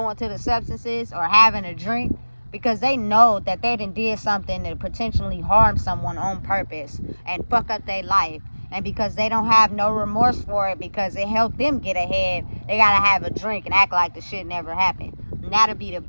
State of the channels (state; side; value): inverted; both; correlation -1.00